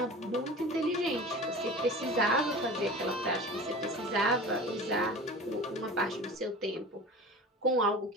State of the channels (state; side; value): normal; both; correlation 0.36